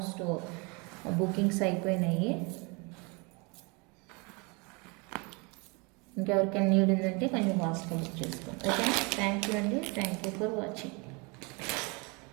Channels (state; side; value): quieter; left; 30.0 dB